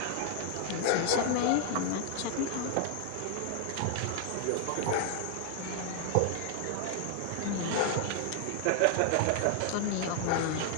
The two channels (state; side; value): different; both; correlation 0.00